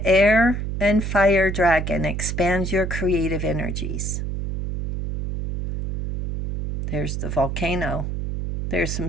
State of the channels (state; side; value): noise; right; hum, 3 dB below the sound